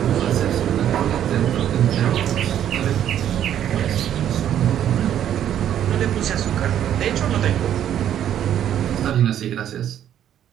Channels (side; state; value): left; quieter; 10.5 dB